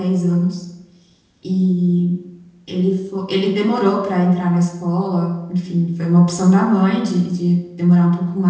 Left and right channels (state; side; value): identical; both; correlation 1.00